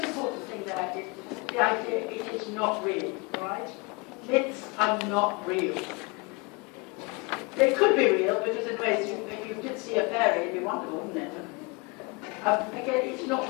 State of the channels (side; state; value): right; quieter; 28.4 dB